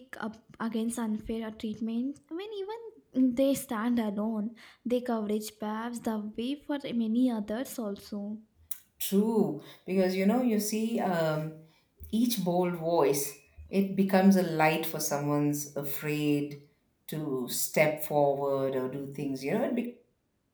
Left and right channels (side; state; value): both; identical; correlation 1.00